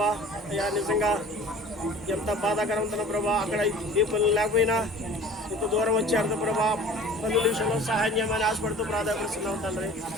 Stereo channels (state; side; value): normal; both; correlation 0.44